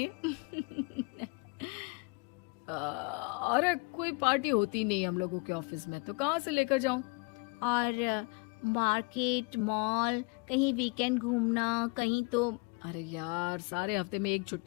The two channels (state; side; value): quieter; right; 30.8 dB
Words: अरे कोई पार्टी होती नहीं हम लोगों के ऑफिस में, तो कहाँ से लेकर जाऊं? और मार्केट, मॉल, कहीं वीकेंड घूमना, कहीं तो। अरे यार सारे हफ्ते में एक